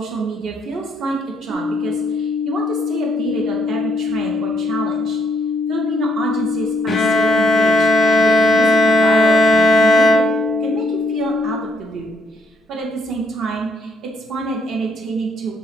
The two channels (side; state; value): both; normal; correlation 0.72